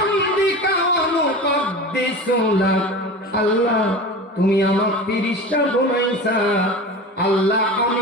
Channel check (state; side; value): normal; both; correlation 0.32